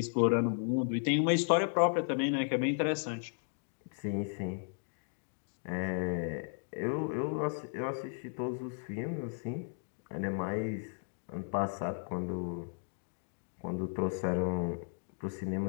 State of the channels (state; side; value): silent; right; digital silence